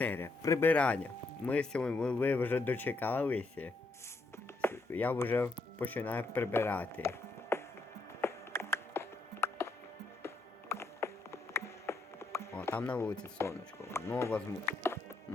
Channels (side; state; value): right; quieter; 3.3 dB